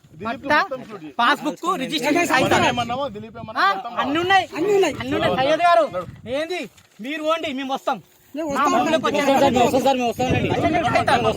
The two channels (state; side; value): identical; both; correlation 1.00